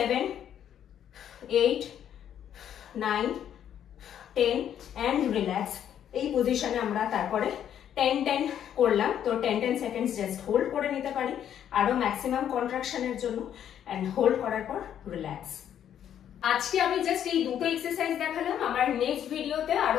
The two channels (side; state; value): right; quieter; 9.9 dB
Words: 8, 9, 10 and relax। এই পজিশনে আমরা তারপরে 10 করলাম, তো 10 সেকেন্ডস জাস্ট হোল্ড করে নিতে পারি আরো ম্যাক্সিমাম কন্ট্রাকশনের জন্য, এন্ড হোল্ড করার পর রিল্যাক্স। আজকে আমি জাস্ট এই দুটো এক্সারসাইজ দেখালাম। আমার নেক্সট ভিডিওতে